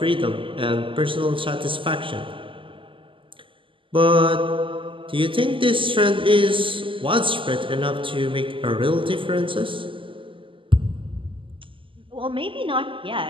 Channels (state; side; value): late; left; 0.25 ms